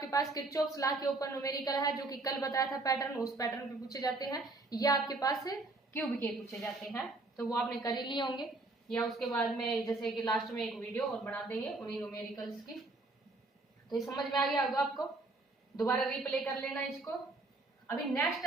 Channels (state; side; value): quieter; left; 3.2 dB